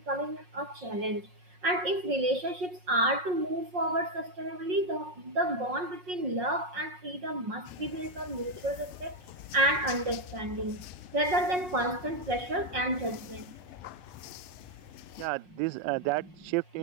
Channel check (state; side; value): late; left; 5.5 ms